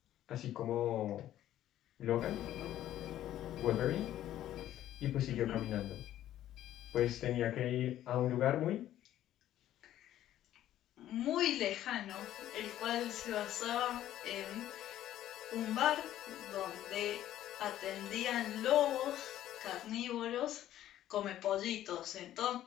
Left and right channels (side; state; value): right; quieter; 12.6 dB